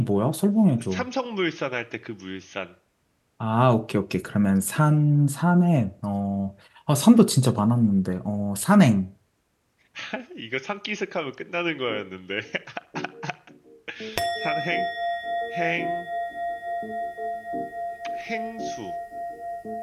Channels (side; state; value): both; identical; correlation 1.00